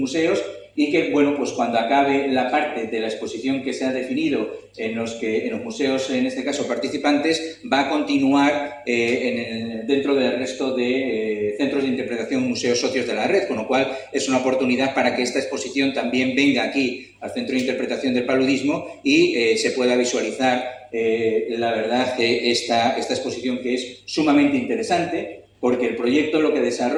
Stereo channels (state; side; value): identical; both; correlation 1.00